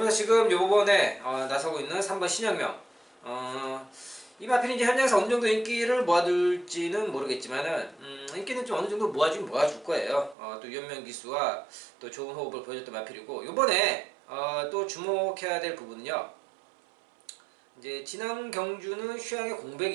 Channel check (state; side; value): drops out; left; at 10.4 s